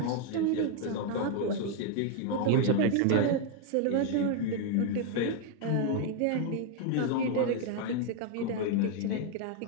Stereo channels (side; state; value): both; different; correlation 0.00